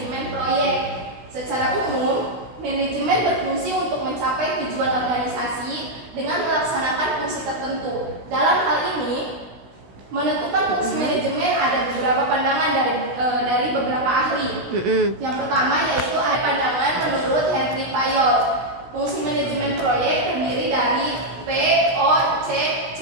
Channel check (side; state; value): left; late; 16 ms